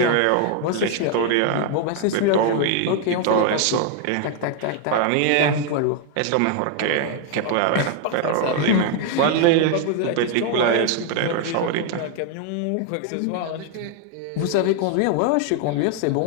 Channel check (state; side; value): different; both; correlation 0.00